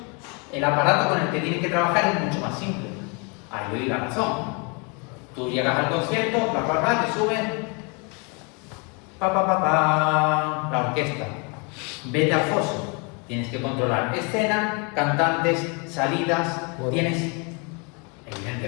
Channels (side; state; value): right; quieter; 33.0 dB